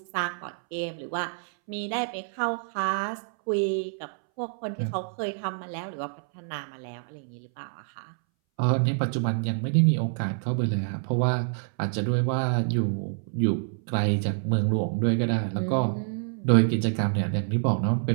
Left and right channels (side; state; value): left; silent; 60 dB below the other